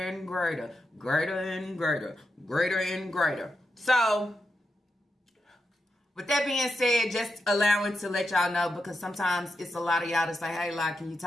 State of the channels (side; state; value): both; normal; correlation 0.86